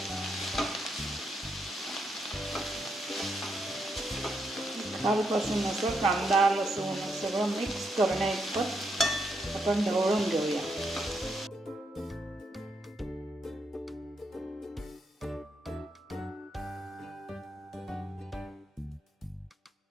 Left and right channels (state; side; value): normal; both; correlation 0.80